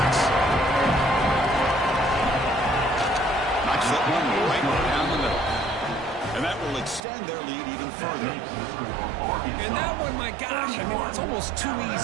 Knocks that one right down the middle. And that will extend their lead even further. And that one, my gosh, I mean, it's almost too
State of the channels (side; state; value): left; drops out; at 7.1 s